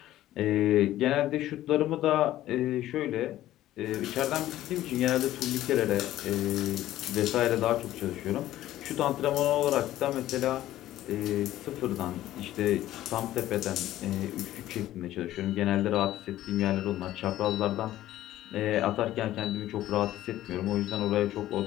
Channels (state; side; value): quieter; right; 14.1 dB